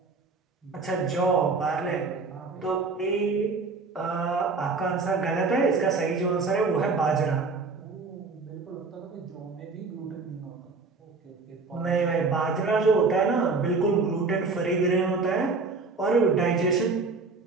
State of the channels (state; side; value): quieter; left; 4.2 dB